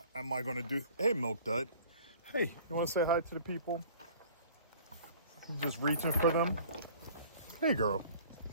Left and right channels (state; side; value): inverted; both; correlation -0.49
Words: am I going to do? Hey, Milk Dud. Hey, you want to say hi to the people? You're just reaching for them. Hey, girl.